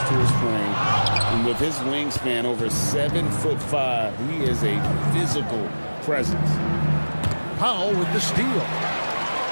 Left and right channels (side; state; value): both; inverted; correlation -1.00